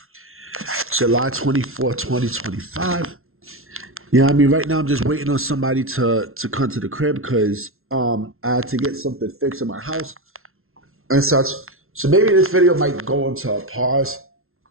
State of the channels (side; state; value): left; late; 0.62 ms